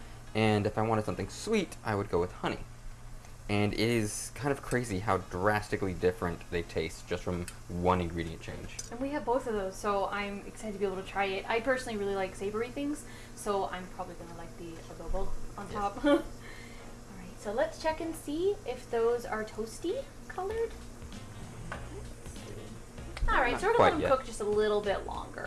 And if I wanted something sweet, I would go with honey. And it is kind of crazy how drastically different they taste just from one ingredient change. And we have both of those, so I'm excited to be able to try it. I personally really like savory things, so I'm probably going to like the adobo on top. All right, so let's check and see if those are toasty colored. All right, so we're going to let them cook just a little bit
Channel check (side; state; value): both; identical; correlation 1.00